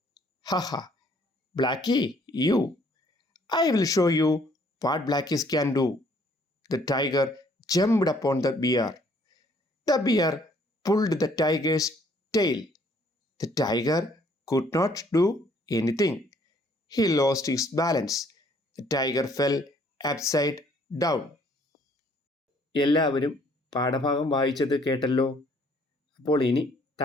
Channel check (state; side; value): normal; both; correlation 0.63